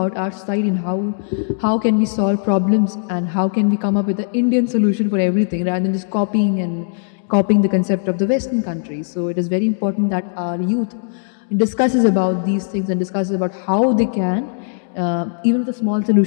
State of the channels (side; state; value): right; silent; digital silence